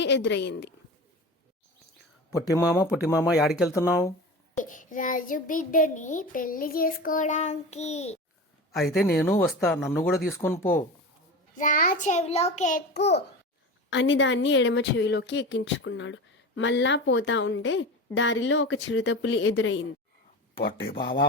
ఎదురయ్యింది. పుట్టిమామ యాడికెళ్తున్నావు? రాజు బిడ్డని పెళ్లి చేసుకోవడానికి. అయితే నేను వస్తా, నన్ను కూడా తీసుకొని పో. రా, చెవిలోకి ఎక్కు అని దాన్ని ఎడమ చెవిలోకి ఎక్కించుకున్నాడు. మళ్ళా పోతా ఉంటే దారిలో ఒక చిరుతపులి ఎదురయ్యింది. పొట్టి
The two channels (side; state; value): both; normal; correlation 0.29